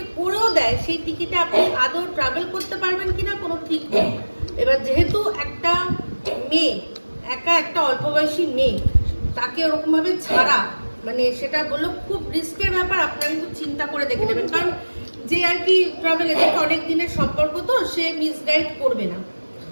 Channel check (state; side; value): inverted; both; correlation -1.00